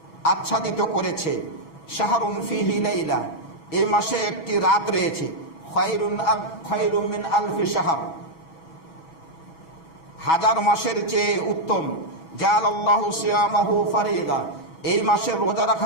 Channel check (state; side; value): late; right; 6.2 ms